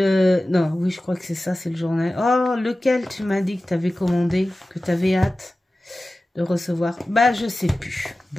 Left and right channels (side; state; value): both; normal; correlation 0.96